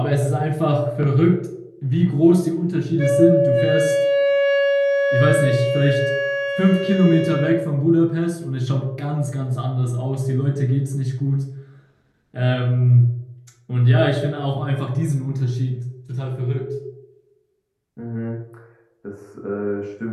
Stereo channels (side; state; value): both; identical; correlation 1.00